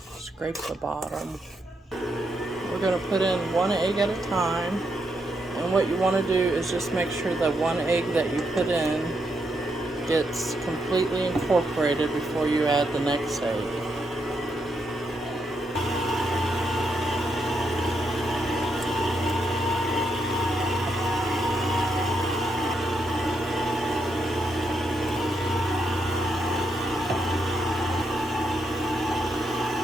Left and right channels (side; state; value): both; normal; correlation 0.80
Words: scrape the bottom. We're going to put in 1 egg at a time, and what you want to do is just make sure that 1 egg that you put in gets completely incorporated before you add the next egg.